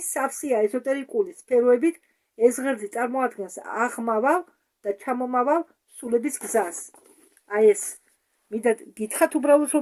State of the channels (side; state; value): both; identical; correlation 1.00